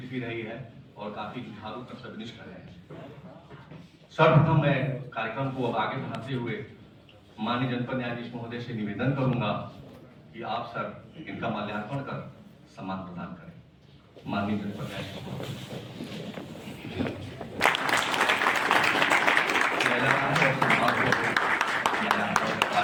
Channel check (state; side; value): identical; both; correlation 1.00